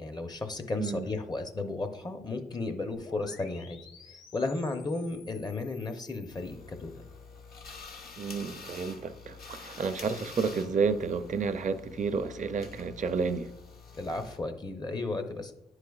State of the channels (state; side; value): normal; both; correlation 0.67